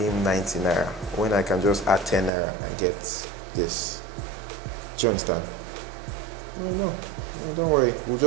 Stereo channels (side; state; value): left; drops out; at 2.3 s